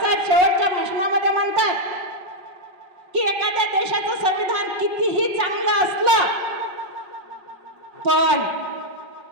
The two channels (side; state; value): left; late; 5.5 ms